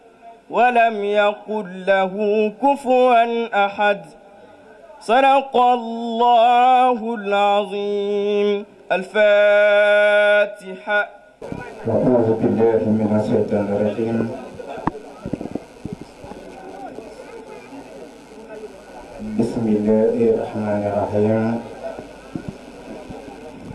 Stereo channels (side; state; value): both; identical; correlation 1.00